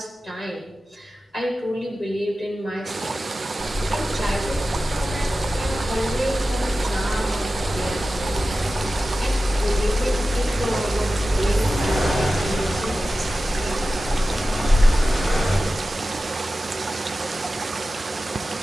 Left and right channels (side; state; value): both; normal; correlation 0.94